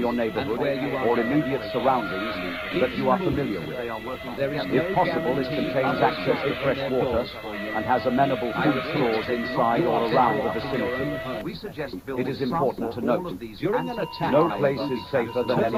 neighborhood where you are or going. immediate surroundings that you are familiar with. There is If no possible, it guarantee contains others access will to open fresh their water doors for you. and has amenable I food repeat, stores inside you or are around the better off in your vicinity. own home. We suggest It is important to note, During an attack, no however, place is safer than turn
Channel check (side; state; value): both; identical; correlation 1.00